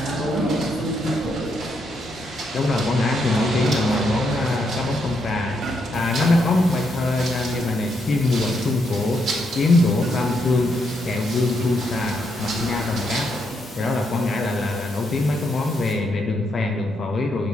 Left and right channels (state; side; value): normal; both; correlation 0.78